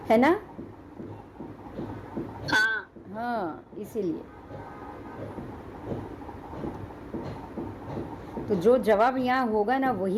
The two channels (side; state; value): both; identical; correlation 1.00